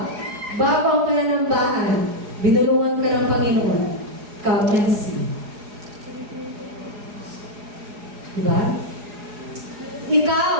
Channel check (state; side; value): late; left; 4.8 ms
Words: bago ang pananambahan, binulungan ka ng Panginoon, come and see. Diba? Ikaw,